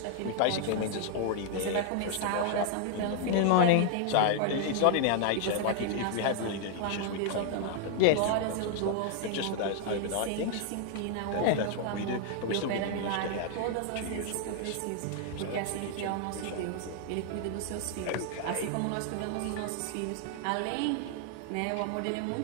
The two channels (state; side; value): different; both; correlation 0.00